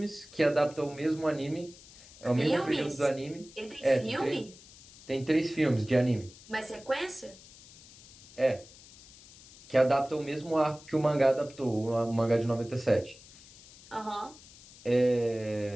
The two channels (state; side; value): noise; left; hiss, 21 dB below the sound